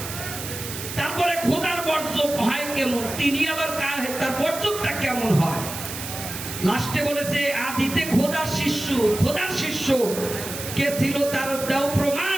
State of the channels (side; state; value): right; noise; hiss, 8 dB below the sound